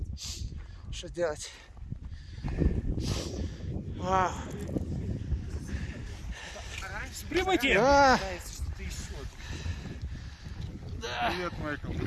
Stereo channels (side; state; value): both; identical; correlation 1.00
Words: что делать? Вау! Прибытие! Да! Привет, Майкл,